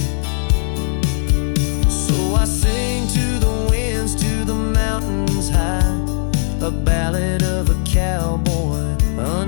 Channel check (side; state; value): right; silent; 67 dB below the other